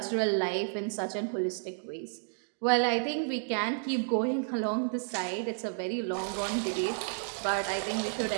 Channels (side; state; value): left; silent; digital silence